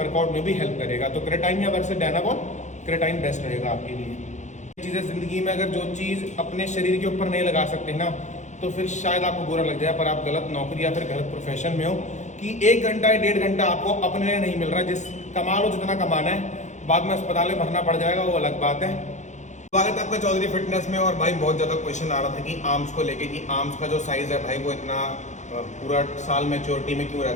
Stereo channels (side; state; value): right; late; 0.34 ms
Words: में भी हेल्प करेगा। तो क्रेटाइन या वर्सेस डायनाबॉल, क्रेटाइन बेस्ट रहेगा आपके लिए। चीज़ें जिंदगी में अगर जो चीज़ अपने शरीर के ऊपर नहीं लगा सकते ना, तो फिर शायद आपको बुरा लग जाए, पर आप गलत नौकरी या फिर गलत प्रोफेशन में हो कि 1 घंटा या 1.5 घंटा आपको अपने लिए नहीं मिल रहा। जिस कमा लो जितना कमाना है, बाद में अस्पताल में भरना पड़ जाएगा, वो अलग बात है। स्वागत है आपका चौधरी फिटनेस में। और भाई बहुत ज़्यादा क्वेश्चन आ रहा था कि आर्म्स को लेके कि आर्म्स का जो साइज़ है भाई वो इतना पूरा साल मैच्योरिटी में क्यों